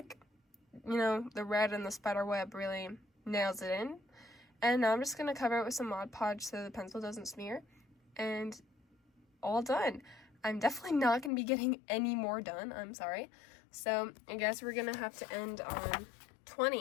you know, the red and the spider web really nails it in. And now I'm just going to cover it with some Mod Podge so the pencil doesn't smear. And all done. I'm definitely not going to be getting any more done. I'm sorry. So I guess we're going to have to end on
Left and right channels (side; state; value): right; drops out; at 11.3 s